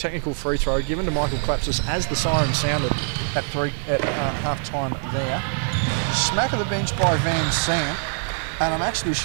free throw given to Michael Klapsis as the siren sounded at half time there. Smack of the bench by Van Sant, and I'm actually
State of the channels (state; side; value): silent; left; digital silence